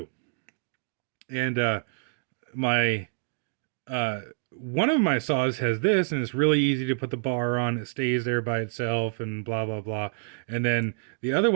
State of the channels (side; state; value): left; silent; digital silence